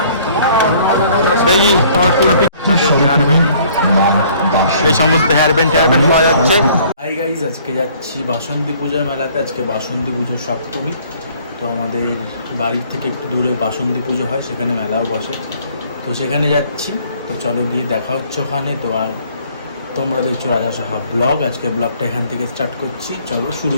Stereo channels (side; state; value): both; inverted; correlation -0.58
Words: দেখি তোমার ফুল এই সমস্ত হেয়ার ব্যান্ড পাওয়া যাচ্ছে। হাই গাইজ, আজকে যাচ্ছি বাসন্তী পূজার মেলাতে। আজকে বাসন্তী পুজোর সপ্তমী। তো আমাদের বাড়ির থেকে একটু দূরে বাসন্তী পুজো হয়, সেখানে মেলাও বসে। তো সেখানে যাচ্ছি। তো চলো গিয়ে দেখা হচ্ছে ওখানে। তো আর তোমরা দেখছো রাজা সাহা ব্লগ। আজকে ব্লগটা এখান থেকে স্টার্ট করছি, চলো শুরু